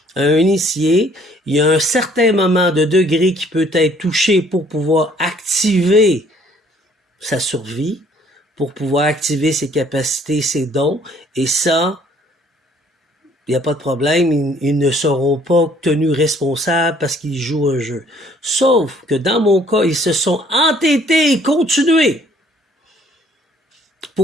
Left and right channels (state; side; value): normal; both; correlation 0.60